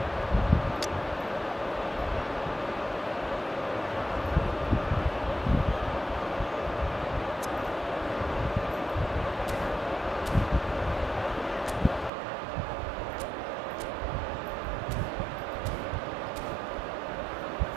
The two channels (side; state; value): left; drops out; at 12.1 s